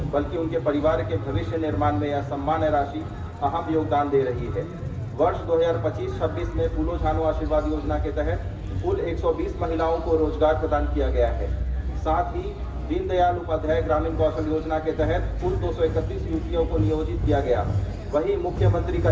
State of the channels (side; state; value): both; identical; correlation 1.00